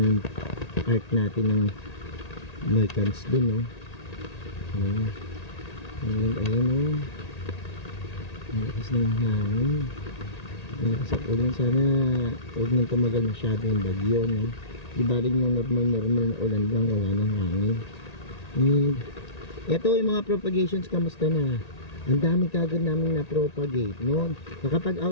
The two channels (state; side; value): late; right; 1.8 ms